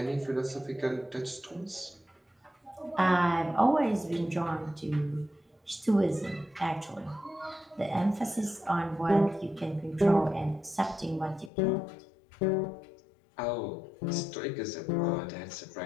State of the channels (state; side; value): drops out; right; at 11.5 s